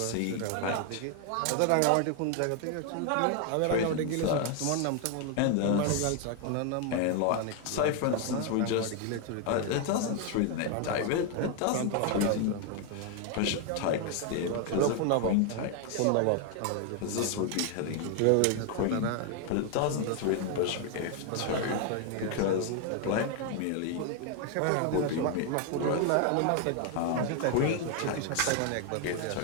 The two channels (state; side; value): different; both; correlation 0.01